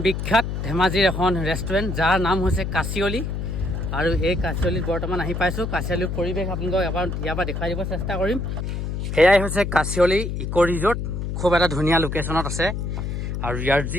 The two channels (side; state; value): left; noise; hum, 3 dB below the sound